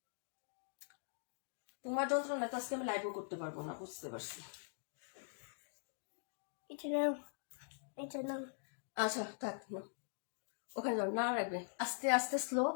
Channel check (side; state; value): right; silent; digital silence